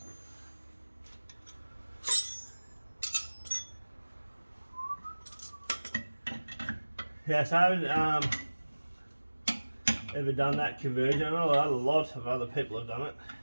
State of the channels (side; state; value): both; inverted; correlation -1.00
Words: Yes, I haven't ever done that conversion. I know a lot of other people have done it,